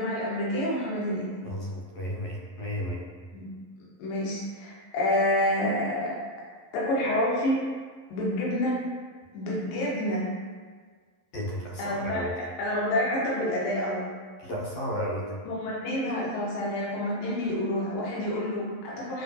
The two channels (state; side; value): late; right; 11 ms